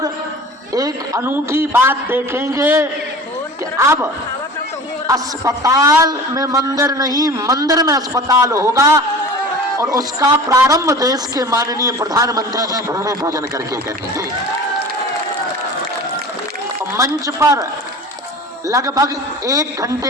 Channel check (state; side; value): normal; both; correlation 0.39